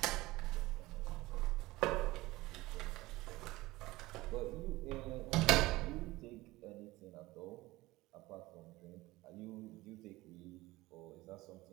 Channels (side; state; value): left; quieter; 19.3 dB